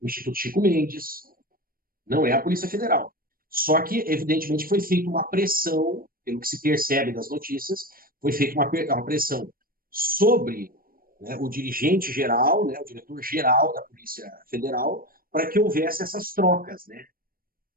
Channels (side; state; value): left; late; 0.42 ms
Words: o Instituto Chico Mendes, não é a Polícia Federal. Só que, evidentemente, foi feita uma pressão, pelo que se percebe das notícias, foi feita uma pressão sobre, né, o dirigente geral, né, o diretor geral da Polícia Federal, para que houvesse essas trocas, né,